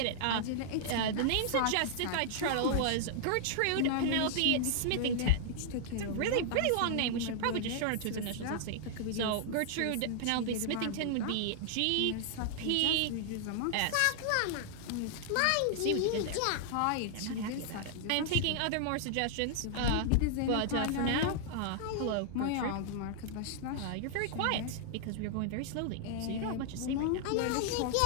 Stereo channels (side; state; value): both; different; correlation -0.01